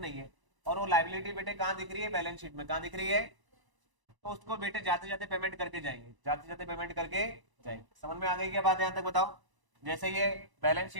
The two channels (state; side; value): late; left; 1.0 ms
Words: नहीं है, और वो लाइबिलिटी बेटे कहाँ दिख रही है? बैलेंस शीट में। कहाँ दिख रही है? तो उसको बेटे जाते जाते पेमेंट करके जाएंगे, जाते जाते पेमेंट करके जाएंगे। समझ में आ गई क्या बात यहां तक? बताओ। जैसे ये बैलेंस